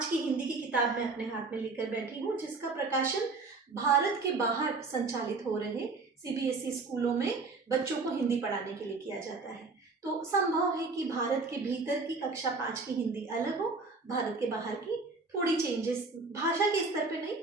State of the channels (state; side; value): quieter; left; 3.9 dB